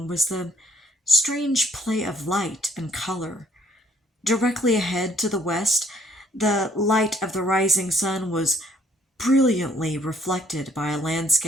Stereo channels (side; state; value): both; normal; correlation 0.64